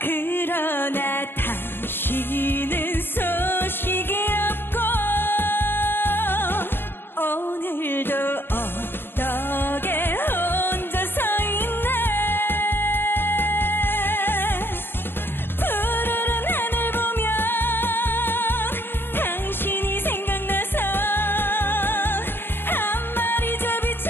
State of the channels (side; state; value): right; late; 0.10 ms